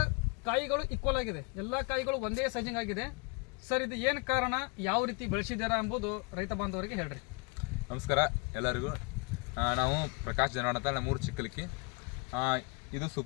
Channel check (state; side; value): quieter; right; 31.8 dB